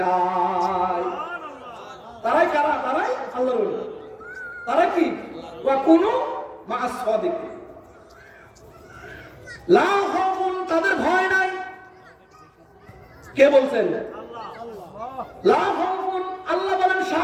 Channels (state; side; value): identical; both; correlation 1.00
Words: তারাই কারা? তারাই আল্লাহর ওলি। তারা কি? ওয়া কুনু মা'আস সাদিকিন, লা খাউফুন, তাদের ভয় নাই। কে বলছেন? লা খাউফুন, আল্লাহ বলেন